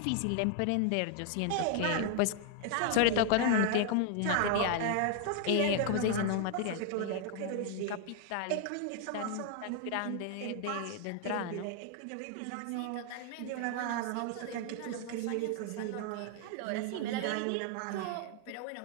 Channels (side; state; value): both; different; correlation 0.00